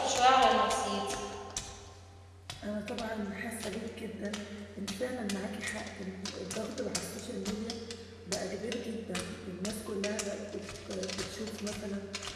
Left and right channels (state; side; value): identical; both; correlation 1.00